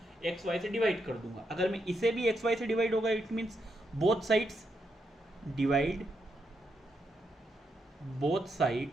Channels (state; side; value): normal; both; correlation 0.81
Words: एक्स वाई से डिवाइड कर दूंगा। अगर मैं इसे भी एक्स वाई से डिवाइड होगा, it means both sides divide both